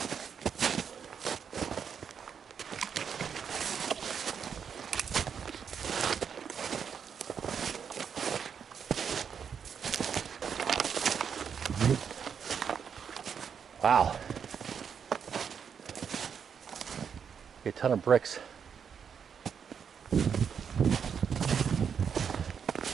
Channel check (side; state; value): left; quieter; 7.1 dB